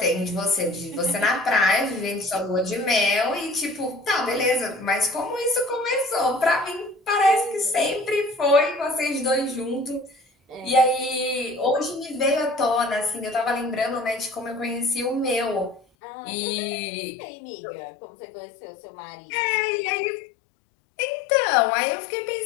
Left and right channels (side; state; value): right; drops out; at 15.8 s